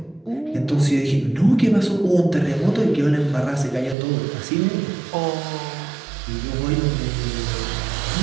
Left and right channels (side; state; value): left; drops out; at 4.0 s